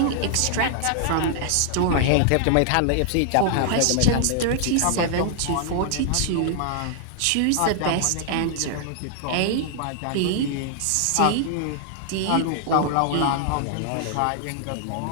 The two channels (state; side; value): different; both; correlation -0.01